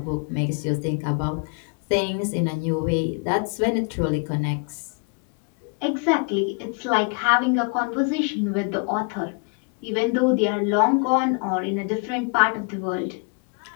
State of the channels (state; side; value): quieter; right; 37.5 dB